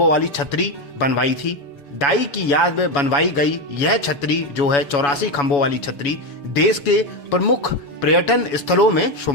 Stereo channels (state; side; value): late; right; 7.1 ms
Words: वाली छतरी बनवाई थी। दाई की याद में बनवाई गई यह छतरी जो है 84 खंभों वाली छतरी देश के प्रमुख पर्यटन स्थलों में